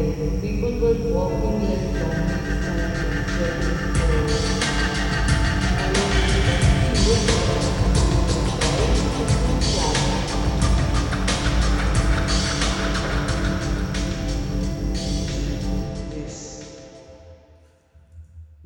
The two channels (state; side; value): identical; both; correlation 1.00